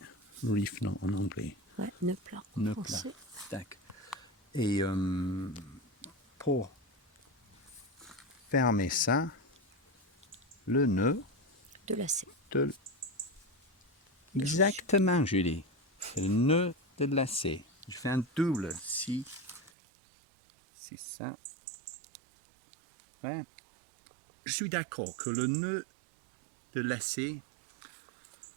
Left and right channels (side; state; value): left; drops out; at 19.7 s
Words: Reef, non, en anglais. Ouais, nœud plat. en Nœud plat. français. Tac. Et pour fermer ça, le nœud De lacet. de... Exactement, Julie. C'est le nœud de lacet. Je fais un double si ça. Ouais. Je suis d'accord que le nœud de lacet,